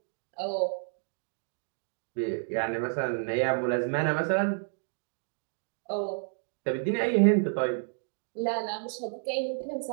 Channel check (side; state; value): left; silent; digital silence